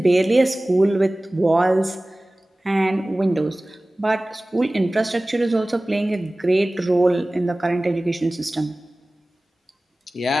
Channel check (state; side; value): normal; both; correlation 0.98